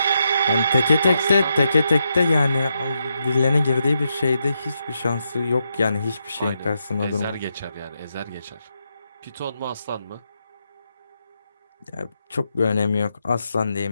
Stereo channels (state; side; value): inverted; both; correlation -0.83